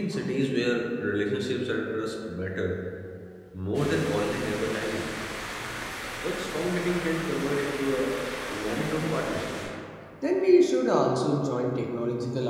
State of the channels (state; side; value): identical; both; correlation 1.00